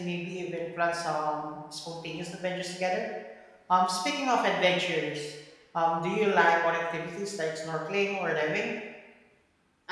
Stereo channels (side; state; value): both; identical; correlation 1.00